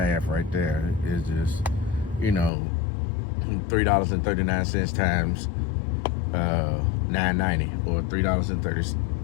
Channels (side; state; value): right; drops out; at 2.5 s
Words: right there. It's just, you know, $3.39 times $9.90, or